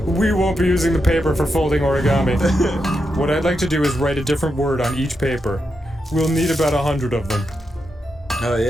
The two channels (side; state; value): both; normal; correlation 0.85